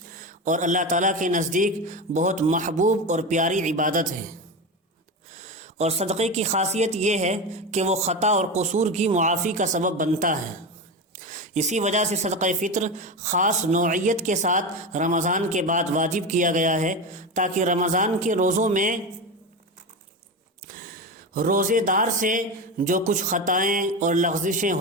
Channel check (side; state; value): both; normal; correlation 0.20